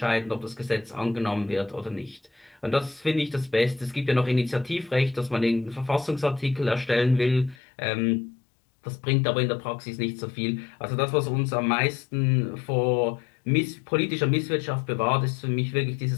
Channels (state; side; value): drops out; right; at 7.6 s